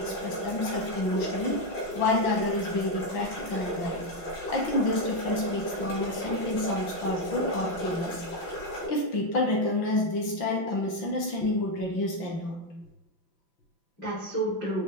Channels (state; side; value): late; right; 5.9 ms